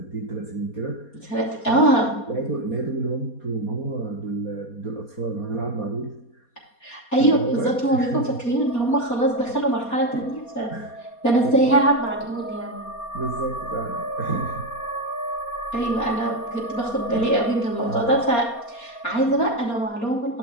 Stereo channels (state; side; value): late; right; 4.2 ms